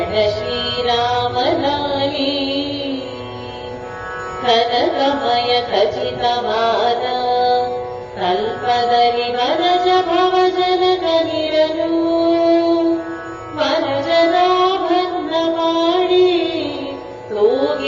श्रीराम लाली कनकमय खचितवाद कल्पदलि वनज भवजनकनिरनु वनजनाभन्न ಮಾಡಿ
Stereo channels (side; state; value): both; identical; correlation 1.00